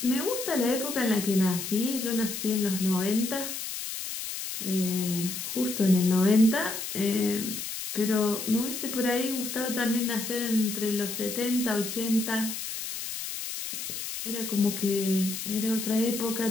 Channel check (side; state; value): left; noise; hiss, 6 dB below the sound